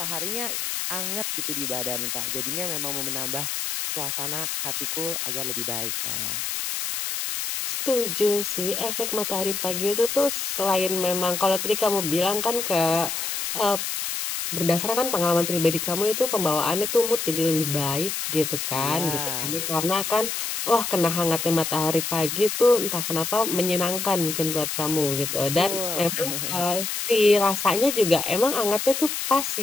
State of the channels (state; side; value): noise; left; hiss, 3 dB below the sound